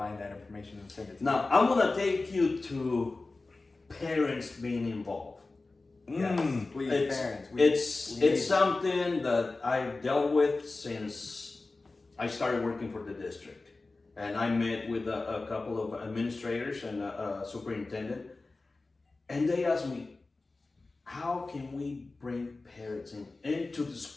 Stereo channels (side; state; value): right; quieter; 3.5 dB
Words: that information and send it to you. Now I'm gonna take you to parents being involved. Yes, please, parents. It's something that I've dealt with since I started working for the district, and I met with a couple of administrators and a superintendent, and they asked me, how can we bring parents into the